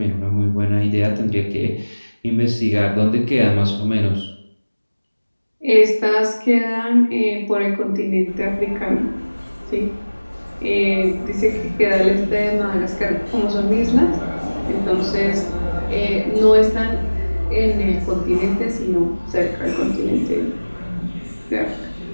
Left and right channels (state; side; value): inverted; both; correlation -1.00